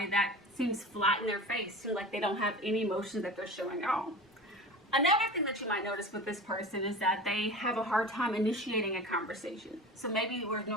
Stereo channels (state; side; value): normal; both; correlation 0.34